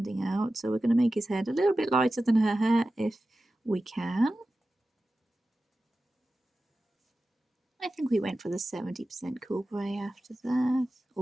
out, so we're going to make his head a little bit lighter than her hair if we can. I think we went for the 70% cool grey after that,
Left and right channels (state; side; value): normal; both; correlation 0.94